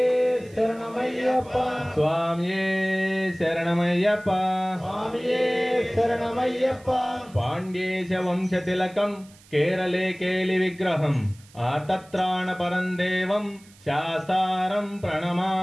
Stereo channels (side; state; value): right; noise; hiss, 26 dB below the sound